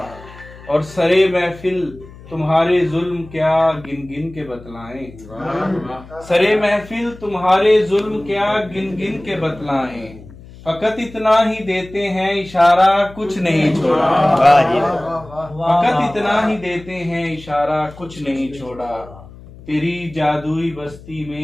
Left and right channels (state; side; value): noise; left; hum, 19 dB below the sound